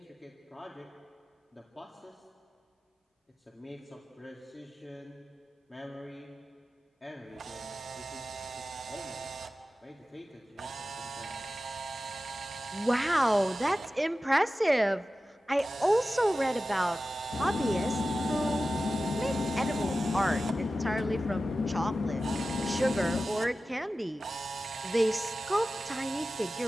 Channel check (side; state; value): both; normal; correlation 0.94